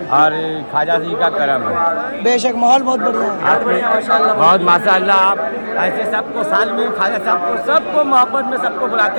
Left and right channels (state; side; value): inverted; both; correlation -1.00